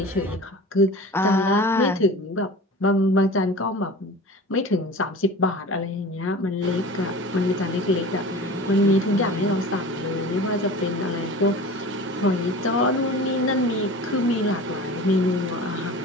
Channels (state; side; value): normal; both; correlation 0.37